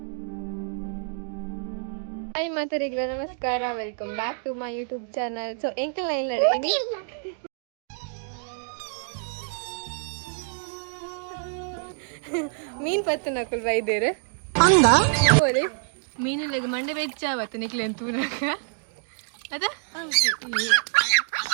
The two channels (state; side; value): silent; left; digital silence